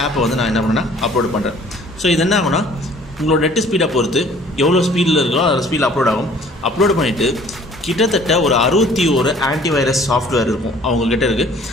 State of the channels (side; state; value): both; normal; correlation 0.54